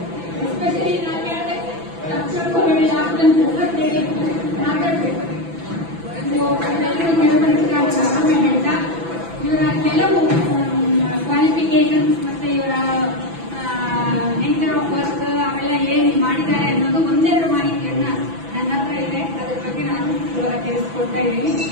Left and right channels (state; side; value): late; left; 6.0 ms